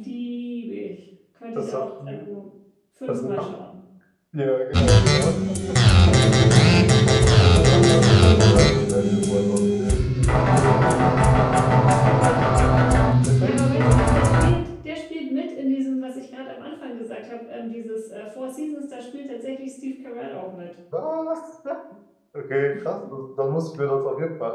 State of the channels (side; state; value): both; identical; correlation 1.00